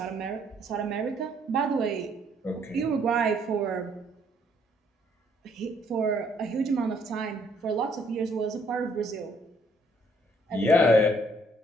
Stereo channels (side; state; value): both; normal; correlation 0.66